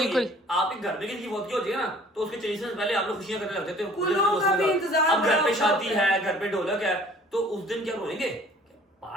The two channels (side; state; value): both; normal; correlation 0.52